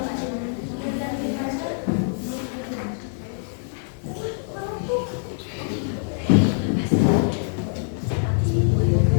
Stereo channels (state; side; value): silent; right; digital silence